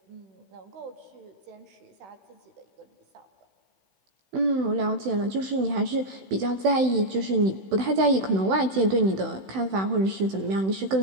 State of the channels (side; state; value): left; late; 16 ms